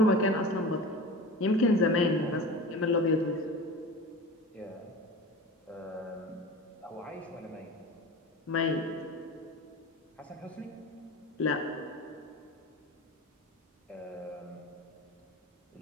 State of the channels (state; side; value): normal; both; correlation 0.33